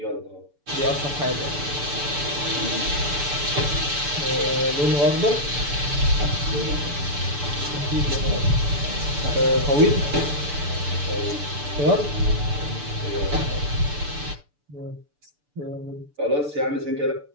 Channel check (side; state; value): left; late; 6.9 ms